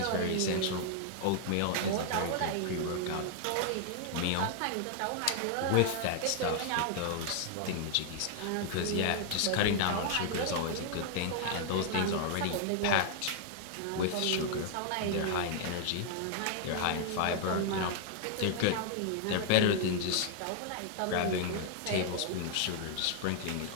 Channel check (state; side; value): different; both; correlation 0.00